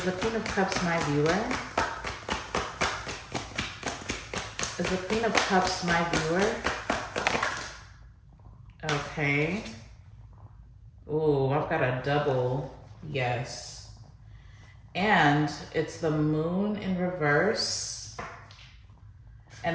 the Queen of Cups my viewer? Is the Queen of Cups my viewer? Okay. Ooh, I've got a double yes. And it's the Moon in reverse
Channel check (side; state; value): both; identical; correlation 1.00